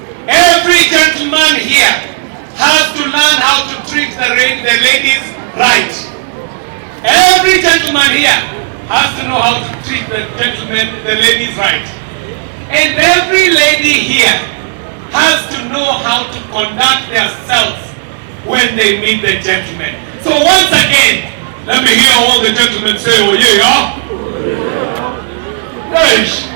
Every gentleman here has to learn how to treat the ladies right. Every gentleman here has to know how to treat the ladies right. And every lady here has to know how to conduct themselves when they meet the gentleman. So once again, let me hear all the gentlemen say, oh yeah. Yes,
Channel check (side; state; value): left; silent; digital silence